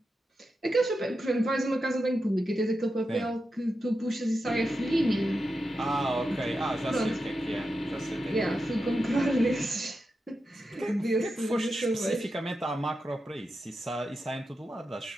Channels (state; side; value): normal; both; correlation 0.89